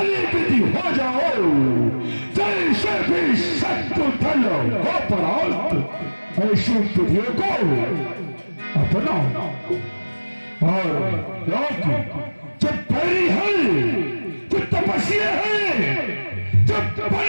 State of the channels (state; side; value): inverted; both; correlation -1.00